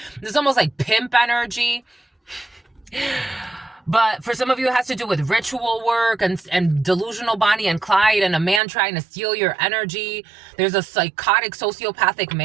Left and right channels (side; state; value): left; drops out; at 8.6 s